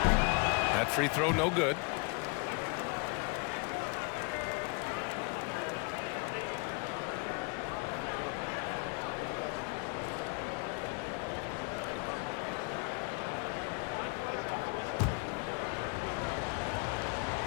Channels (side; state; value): right; quieter; 31.7 dB